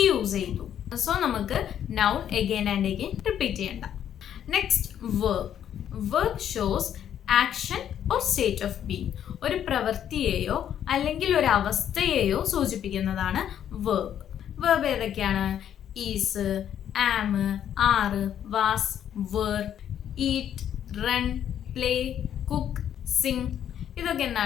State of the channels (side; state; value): right; quieter; 9.9 dB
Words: യൂസ് ചെയ്തു. സോ നമുക്ക് noun again and again repeat ചെയ്യണ്ട. Next, verb. Verb shows action or state of being. ഒരു പ്രവൃത്തിയെയോ അല്ലെങ്കിൽ ഒരു അവസ്ഥയെയോ സൂചിപ്പിക്കുന്നതാണ് വെർബ്. വെർബ് ഏതൊക്കെയാണ്? Is, am, are, was, were, eat, run, play, cook, sing, ഇതൊക്കെ